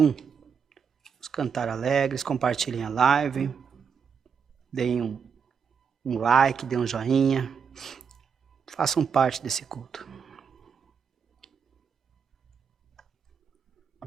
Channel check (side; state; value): left; quieter; 6.5 dB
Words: Vamos cantar alegres, compartilhem a live, deem um like, deem um joinha, façam parte desse culto.